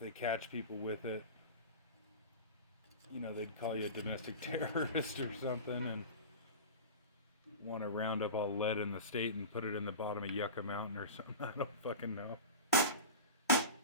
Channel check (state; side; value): inverted; both; correlation -0.31